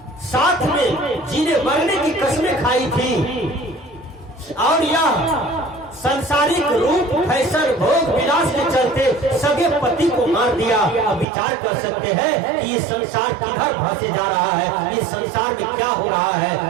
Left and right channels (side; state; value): left; drops out; at 11.2 s